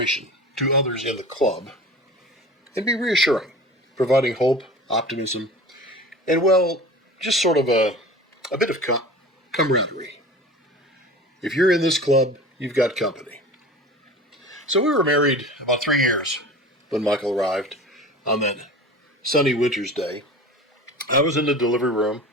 to others in the club and be reassuring, providing hope, optimism, and just sort of a bit of camaraderie. If you're in this club, you've got company. So we were married about 3 years when Michael arrived on that sunny winter's day. I was in the delivery room.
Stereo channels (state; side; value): normal; both; correlation 0.37